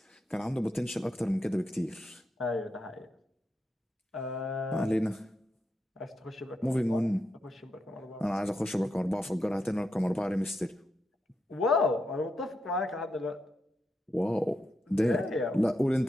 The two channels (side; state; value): both; normal; correlation 0.85